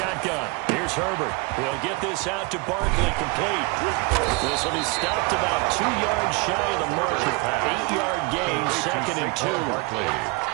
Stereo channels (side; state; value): left; quieter; 27.6 dB